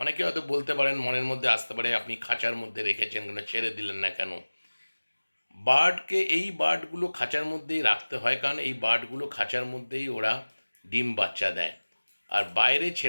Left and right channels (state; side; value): inverted; both; correlation -1.00